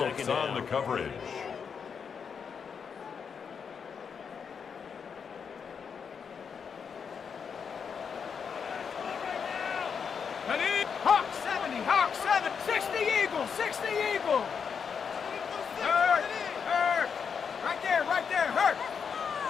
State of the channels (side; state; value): right; quieter; 6.5 dB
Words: on the down. coverage. Ready? Hawk 70. 60 Eagle. Hurt. Right there. Hurt.